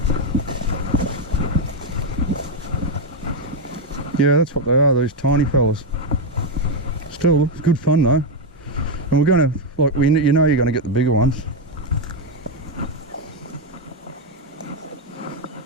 Yeah, that's what they are, these tiny fellas. Still, it's good fun though. And we're going to, like, you know you're going to get the bigger ones.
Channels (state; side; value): normal; both; correlation 0.04